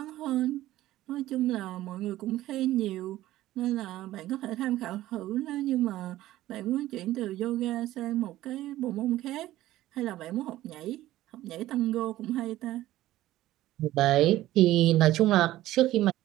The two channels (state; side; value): quieter; left; 15.1 dB